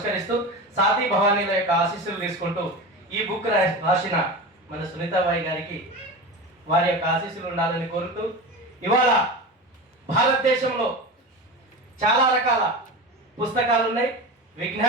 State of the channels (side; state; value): both; normal; correlation 0.27